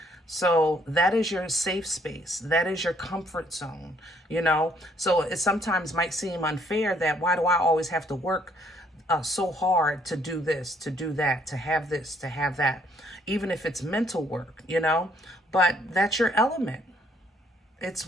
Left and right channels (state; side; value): normal; both; correlation 0.66